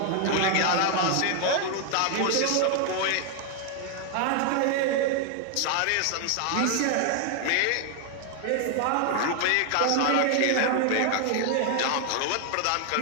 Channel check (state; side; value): different; both; correlation 0.00